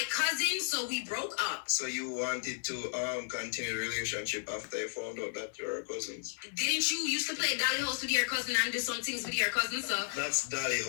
cousin, so we broke up. So you wanted to continue the relationship after you found out that you're cousins? Didn't you used to play Dolly House with your cousin and do some things with your cousin, so... That's Dolly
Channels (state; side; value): silent; right; 55 dB below the other